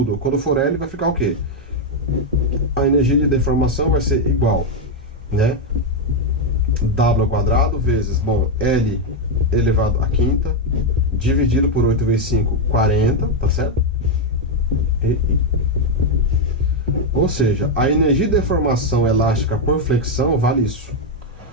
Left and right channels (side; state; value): both; normal; correlation 0.03